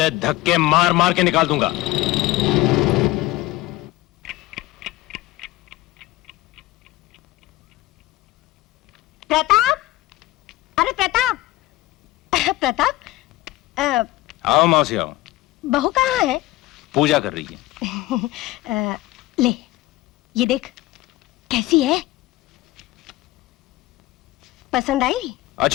धक्के मार मार के निकाल दूंगा। प्रताप, अरे प्रताप, प्रताप, आओ मौसी आओ। बहू कहाँ है? पूजा कर रही है। ले, ये देख कैसी है, पसंद आई?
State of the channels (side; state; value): right; quieter; 17.6 dB